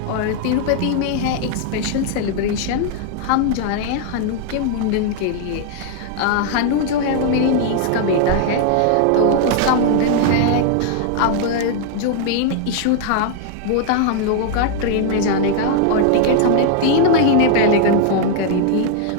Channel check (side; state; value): both; different; correlation 0.00